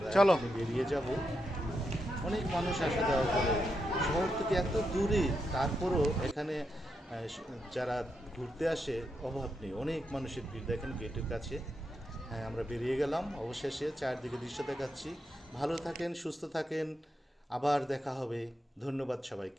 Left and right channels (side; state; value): both; normal; correlation 0.84